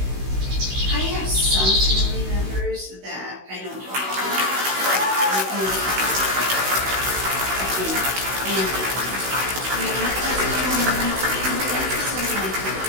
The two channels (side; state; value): left; late; 16 ms